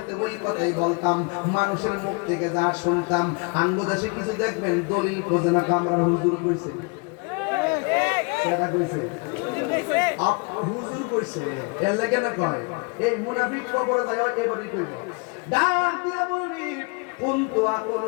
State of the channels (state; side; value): quieter; right; 31.9 dB